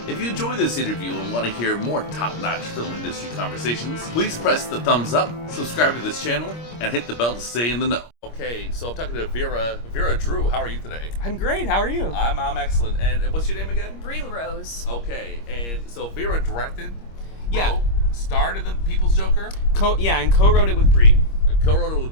If you enjoy this interview and want to hear more top-notch film industry conversations, please press the thumbs up, subscribe to this channel, and hit the bell to stay in the know. Okay, so I'm talking to Vera Drew. How are you today? I'm great. How are you? I'm excellent. And what's your name again? Bri LeRose. Okay, and so Vera directed, Yeah. starred in The People's Joker, and co-wrote it with Bri. co-wrote it with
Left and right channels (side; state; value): right; late; 25 ms